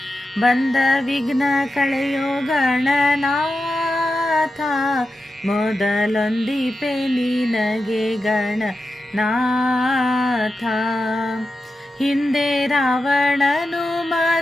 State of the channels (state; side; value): normal; both; correlation 0.91